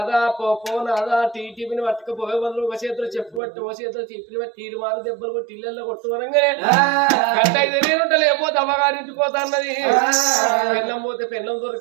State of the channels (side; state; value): left; drops out; at 3.4 s